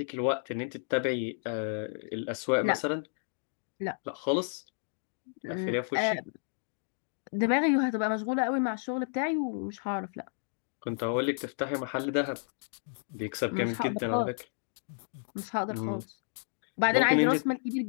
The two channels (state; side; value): silent; right; digital silence